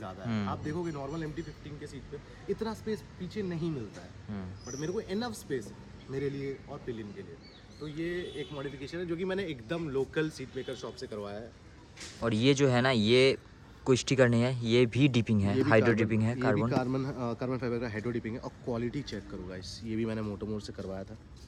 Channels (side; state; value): both; identical; correlation 1.00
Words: है। आप देखोगे नॉर्मल MT-15 के सीट पे इतना स्पेस पीछे नहीं मिलता है, बट मेरे को इनफ स्पेस है मेरे लिए और पिलियन के लिए। तो ये एक मॉडिफिकेशन है जो कि मैंने एकदम लोकल सीट मेकर शॉप से करवाया है। और ये जो है ना, ये कोई स्टिकर नहीं है, ये भी डिपिंग है, हाइड्रो डिपिंग है, कार्बन फाइबर का हाइड्रो डिपिंग है। और क्वालिटी चेक करो गाइस, ये भी मैंने मोटोमोर से करवाया था,